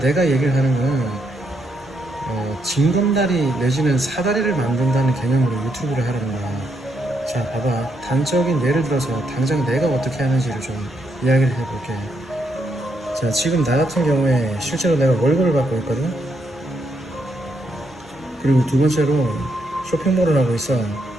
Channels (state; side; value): normal; both; correlation 0.78